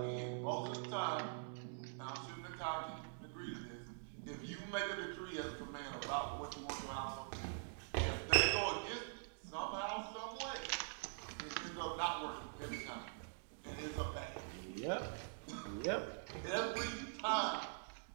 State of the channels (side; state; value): left; silent; digital silence